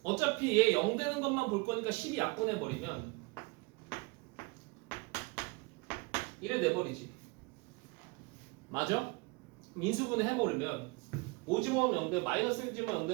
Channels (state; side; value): quieter; left; 27.1 dB